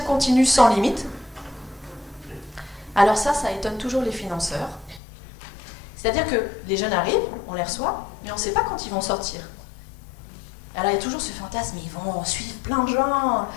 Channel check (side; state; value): right; drops out; at 5.0 s